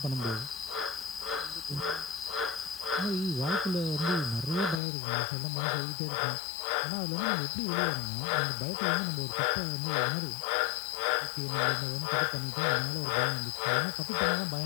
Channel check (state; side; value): drops out; right; at 4.8 s